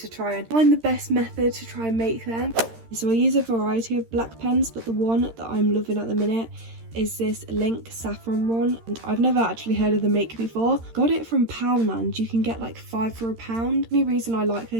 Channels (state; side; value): late; left; 13 ms